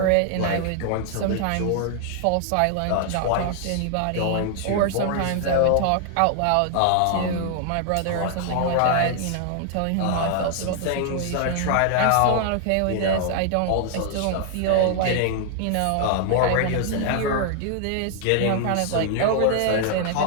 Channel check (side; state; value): both; different; correlation 0.00